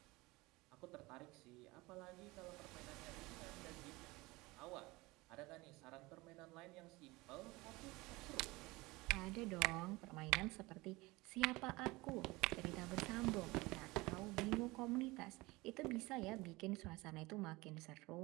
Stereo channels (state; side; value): quieter; left; 22.1 dB